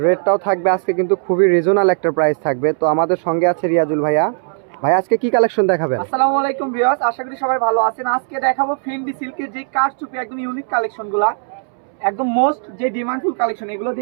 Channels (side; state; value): left; silent; 67 dB below the other